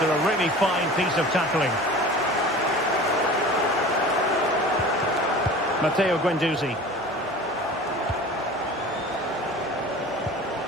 a really fine piece of tackling. Matteo Guendouzi.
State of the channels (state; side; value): noise; left; hum, 24 dB below the sound